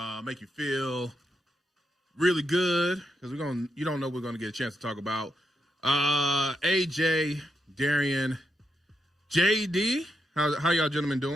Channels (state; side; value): normal; both; correlation 0.82